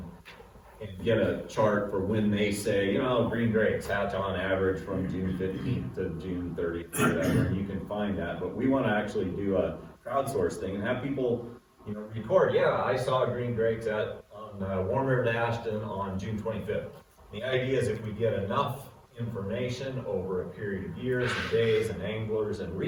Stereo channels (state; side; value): identical; both; correlation 1.00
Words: and get a chart for when they say, green drakes hatch on average from June 15th to June 30th or whatever, and you can find that. But we want to actually do a crowdsource thing and have people, record, I saw green drakes on Warm River to Ashton on June 25th. The idea is if we get enough information over a period of years and days and anglers and